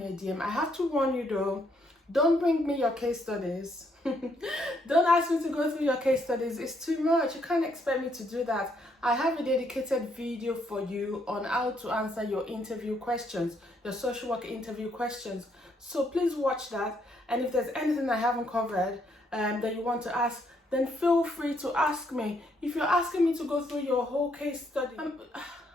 a DM. I have to warn you though, don't bring me your case studies. Don't ask me to go through your case studies. It's too much. You can't expect me to do that. I have a dedicated video for you on how to answer your interview questions, your social work interview questions. So please watch that. And if there's anything I haven't covered that you want to ask, then feel free to ask me. If you're asking me to go through your whole case study,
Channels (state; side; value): normal; both; correlation 0.72